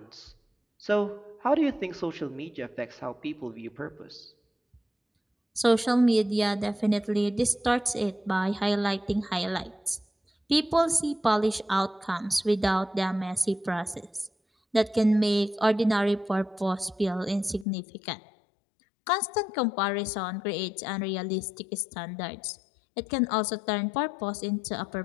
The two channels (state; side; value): drops out; right; at 17.7 s